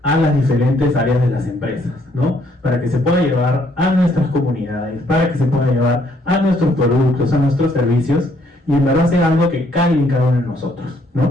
a las diferentes áreas de las empresas, ¿no? Para que se pueda llevar a nuestras comunidades, para que se pueda llevar a nuestros productos, a nuestros servicios, y en verdad sea algo que caiga en cada uno de nosotros,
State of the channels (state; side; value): normal; both; correlation 0.68